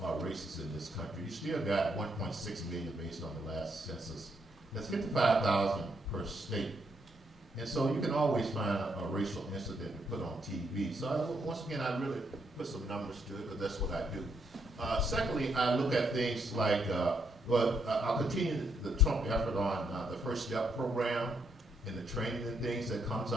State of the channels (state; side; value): normal; both; correlation 0.75